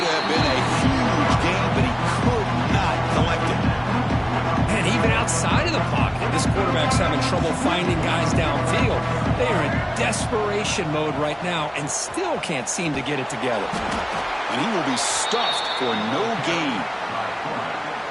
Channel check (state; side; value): identical; both; correlation 1.00